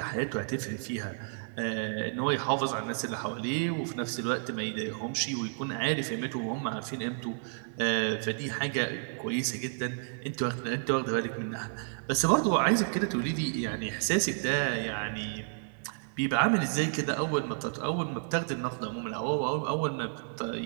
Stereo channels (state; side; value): silent; left; digital silence